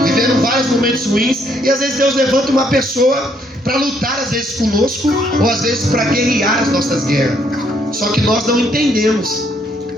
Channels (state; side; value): normal; both; correlation 0.70